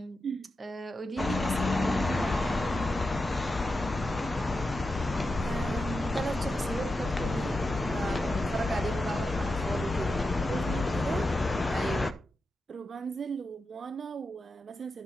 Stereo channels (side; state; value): both; normal; correlation 0.89